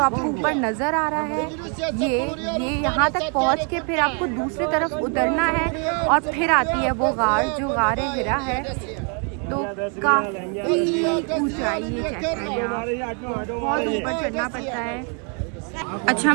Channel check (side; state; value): left; quieter; 38.8 dB